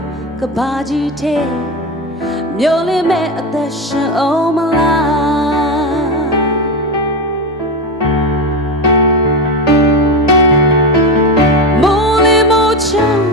ကဘာကြီးတဲ့မျောလင်းမဲ့အသက်ရှင်အောင်မလား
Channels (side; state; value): both; normal; correlation 0.17